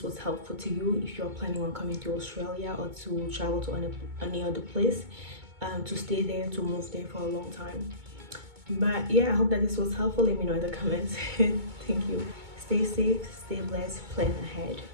was helpful to you if you're planning on coming to Australia or to travel to any other place, to stay there, to move there for a long time. But yeah, I hope that this was helpful. Let me know in the comments. Thank you. Stay safe, stay blessed, plan ahead.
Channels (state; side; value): late; left; 2.2 ms